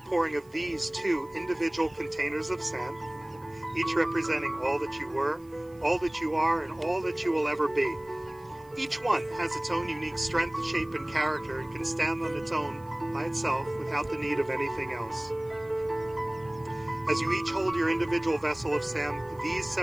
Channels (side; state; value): right; noise; hiss, 29 dB below the sound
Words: of these two individual containers of sand, each representing all that you were, all that you are, and all that you will ever be. Each one has its own unique strength, shape, and character and can stand on its own by itself without the need of anything else. As you each hold your individual vessel of sand, these